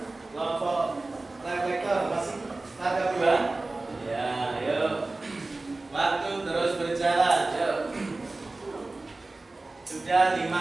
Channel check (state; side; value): quieter; left; 3.2 dB